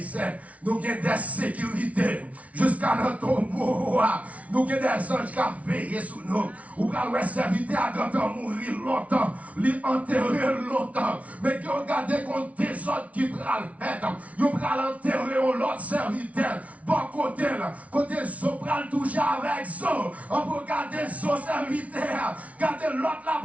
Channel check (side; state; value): left; late; 0.067 ms